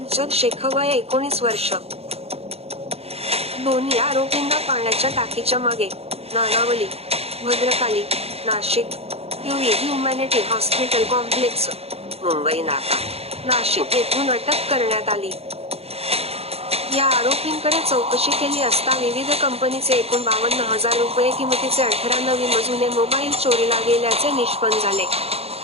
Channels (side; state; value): left; late; 0.29 ms